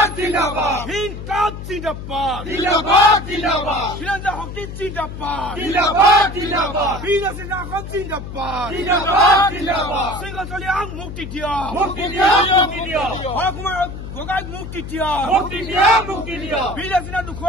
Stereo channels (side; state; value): left; noise; hum, 10 dB below the sound